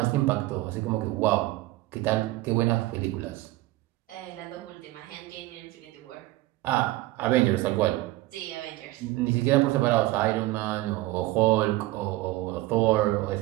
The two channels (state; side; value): quieter; left; 18.3 dB